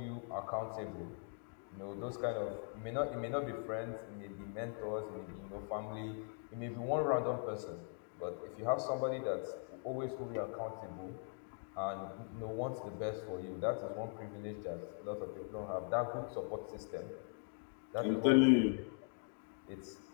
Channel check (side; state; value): right; silent; 50 dB below the other